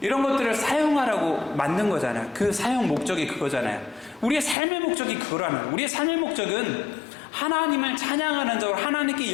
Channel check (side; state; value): right; drops out; at 4.5 s